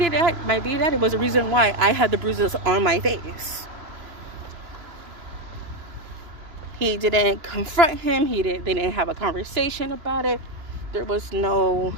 daddy was the reason why I had the bruises on my face. He didn't confront him. They didn't have a conversation about it. There was no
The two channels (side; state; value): left; late; 2.9 ms